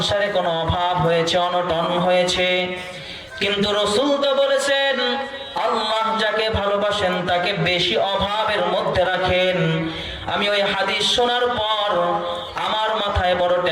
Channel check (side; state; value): both; identical; correlation 1.00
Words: কোনো অভাব হয়েছে, অনটন হয়েছে। কিন্তু রাসূল তো বলেছেন আল্লাহ যাকে ভালোবাসেন তাকে বেশি অভাবের মধ্যে রাখেন। আমি ওই হাদিস শোনার পর আমার মাথায় বড়